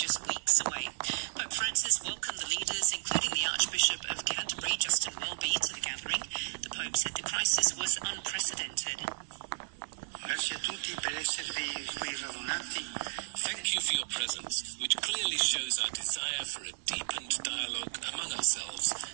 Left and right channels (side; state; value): left; silent; digital silence